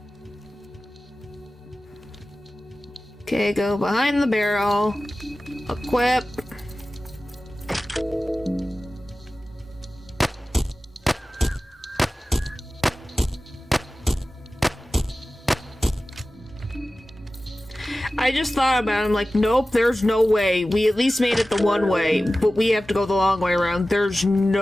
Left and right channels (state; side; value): normal; both; correlation 0.96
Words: Okay, go behind the barrel. Equip. I just thought about it. I'm like, nope, there's no way. We at least made it the one way, but we have to go the long way around. There's